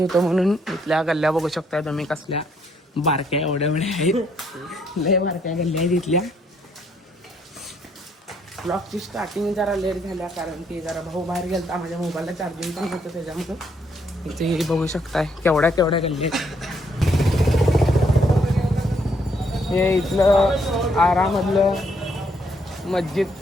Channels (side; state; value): both; normal; correlation 0.71